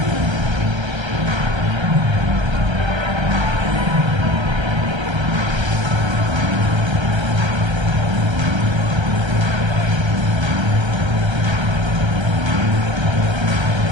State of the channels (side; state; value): left; late; 1.3 ms